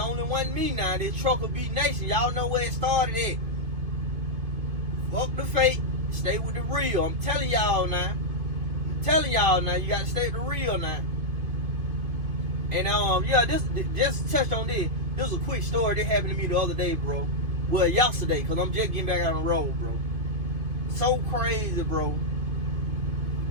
one me now. This Trucker Beat Nation. Y'all know where it started at. Fuck the fake. Stay with the real. I'm telling y'all now. You gotta stay with the real now. And yeah, this just touched on this. This was a quick story that happened to me the other day, bro. Well, yesterday, because I'm just getting back out on the road, bro. So crazy, bro.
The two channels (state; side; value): late; left; 2.5 ms